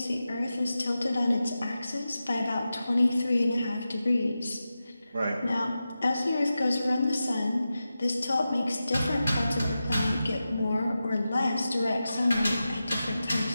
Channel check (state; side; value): inverted; both; correlation -0.92